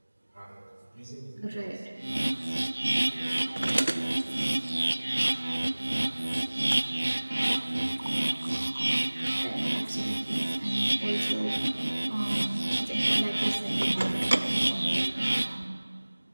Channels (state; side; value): inverted; both; correlation -1.00